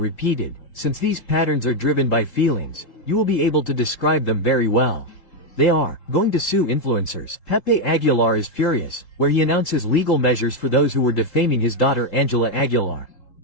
since these patterns are driven by feelings, you will be able to describe them very well. They are going to sue influencers. Pepe Aguilar is furious, where he announces legal measures for those who were defaming his daughter Angela Aguilar.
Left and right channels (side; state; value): right; late; 3.7 ms